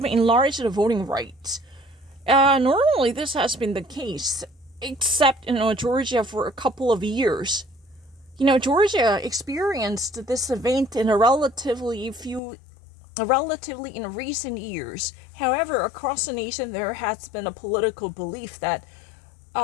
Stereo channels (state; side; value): drops out; right; at 12.4 s